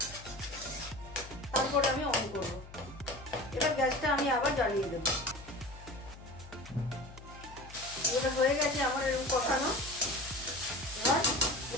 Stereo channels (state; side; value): noise; left; hum, 17 dB below the sound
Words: তারপরে আমি অন করব। এবার গ্যাসটা আমি আবার জ্বালিয়ে দেব। এটা হয়ে গেছে আমার এরকম কষানো।